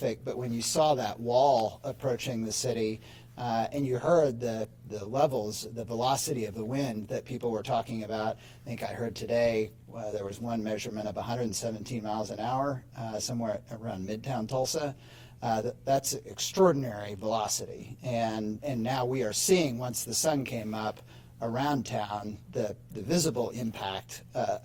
but when you saw that wall approaching the city and you heard the levels, the velocity of the wind that people were talking about, I think I heard today there was one measurement of 117 miles an hour somewhere around Midtown Tulsa. That's extraordinary velocity, and now we are seeing, once the sun came up around town, the visible impact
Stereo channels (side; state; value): both; identical; correlation 1.00